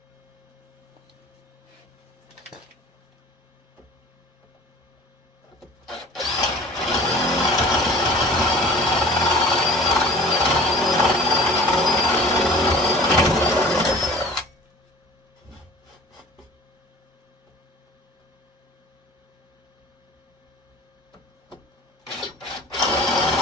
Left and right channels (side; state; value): both; normal; correlation 0.45